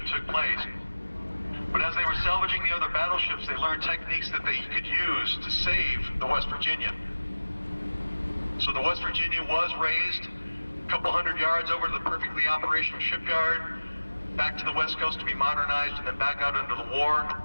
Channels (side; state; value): both; inverted; correlation -1.00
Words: took place. But as they were salvaging the other battleships, they learned techniques that they could use to save the West Virginia. So the West Virginia was raised a couple hundred yards over to the perfectly operational shipyard, back to the West Coast to be modernized, and then back out into the war.